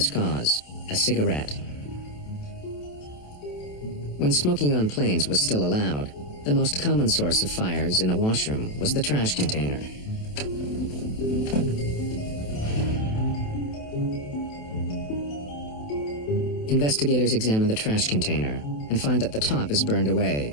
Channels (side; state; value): right; late; 28 ms